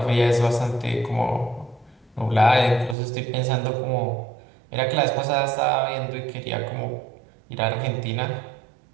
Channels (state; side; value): drops out; left; at 3.0 s